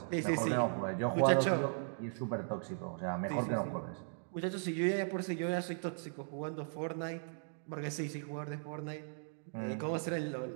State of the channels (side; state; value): left; silent; digital silence